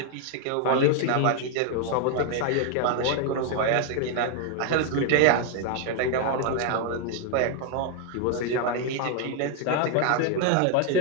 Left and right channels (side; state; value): both; different; correlation 0.00